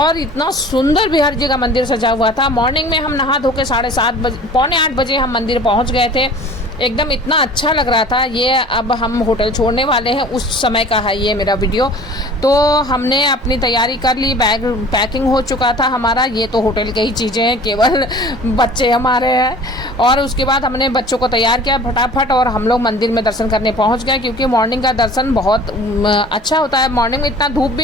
इतना सुंदर बिहारी जी का मंदिर सजा हुआ था। मॉर्निंग में हम नहा धो के 7:30 बजे, पौने 8 बजे हम मंदिर पहुँच गए थे। एकदम इतना अच्छा लग रहा था। ये अब हम होटल छोड़ने वाले हैं, उस समय का है ये मेरा वीडियो। तो हमने अपनी तैयारी कर ली, बैग पैकिंग हो चुका था हमारा। ये तो होटल की ही चीज़ें हैं, केवल बच्चे हमारे हैं। और उसके बाद हमने बच्चों को तैयार किया फटाफट और हम लोग मंदिर में दर्शन करने पहुंच गए, क्योंकि मॉर्निंग का दर्शन बहुत अच्छा होता है। मॉर्निंग में इतना धूप भी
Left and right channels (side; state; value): both; normal; correlation 0.45